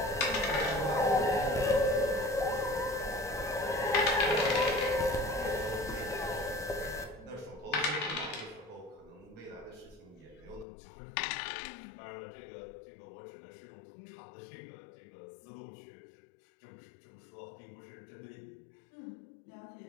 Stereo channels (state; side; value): drops out; right; at 10.7 s